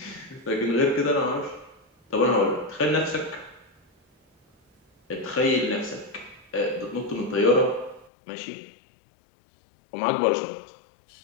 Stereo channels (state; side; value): drops out; right; at 8.1 s